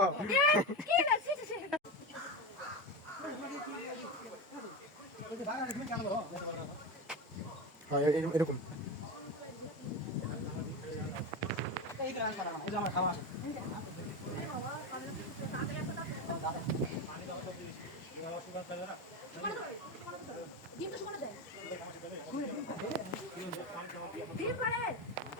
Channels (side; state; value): both; normal; correlation 0.19